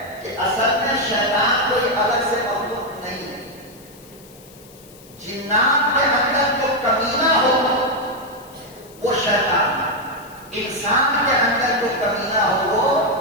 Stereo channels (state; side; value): noise; left; hiss, 23 dB below the sound